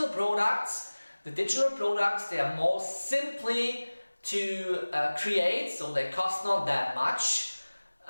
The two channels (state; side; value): inverted; both; correlation -1.00